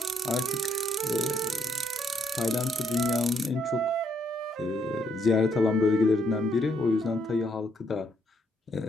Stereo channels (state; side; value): normal; both; correlation 0.73